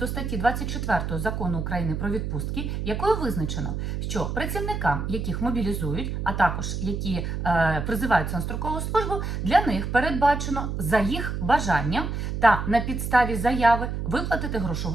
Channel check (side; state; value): right; noise; hum, 3 dB below the sound